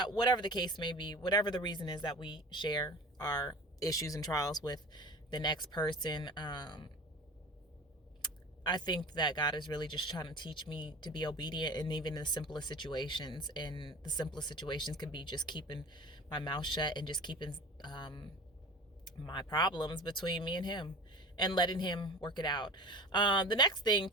whatever the case may be, whatever the reason is that we share our issues and trials with the next person. I think that God is really just trying to teach me to be obedient, and even in the simplest situations. And the simplest situations can be just keeping my mouth shut and just keeping my problems between me and him and letting him work it out. The next thing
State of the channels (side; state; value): both; normal; correlation 0.37